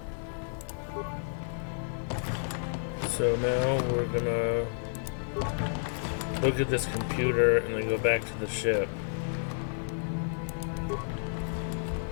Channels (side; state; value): right; silent; digital silence